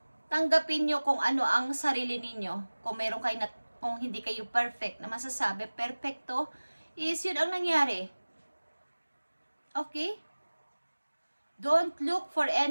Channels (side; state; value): both; inverted; correlation -1.00